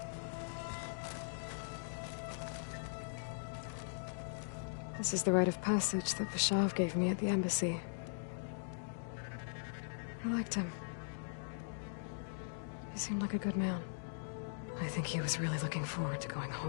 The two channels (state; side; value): silent; right; digital silence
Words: This is the rite of passage that Bashav gave me at the embassy. I liked him. He seemed like a good man. I think he was really looking forward to going